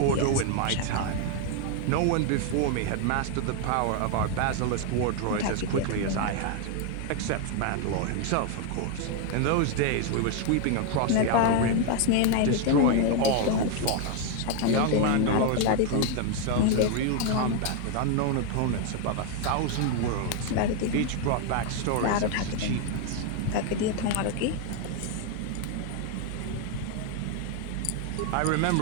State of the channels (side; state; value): both; different; correlation 0.01